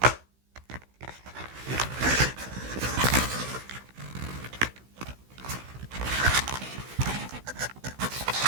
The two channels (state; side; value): late; left; 16 ms